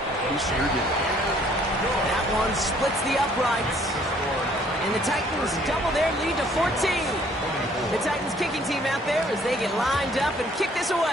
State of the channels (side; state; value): both; normal; correlation 0.61